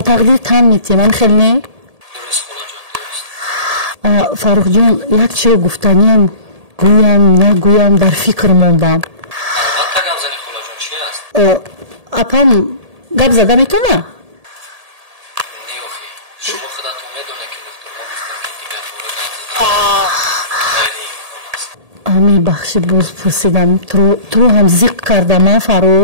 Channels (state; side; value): late; left; 1.8 ms